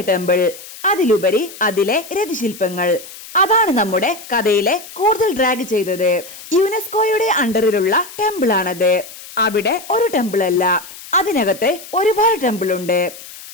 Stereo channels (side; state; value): left; noise; hiss, 16 dB below the sound